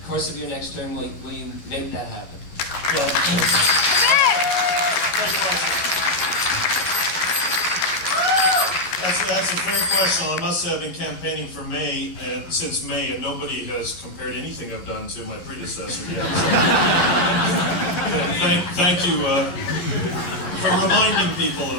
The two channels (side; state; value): right; late; 11 ms